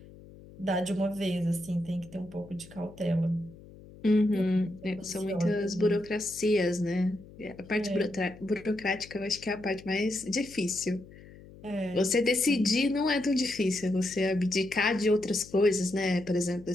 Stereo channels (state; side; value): noise; left; hum, 20 dB below the sound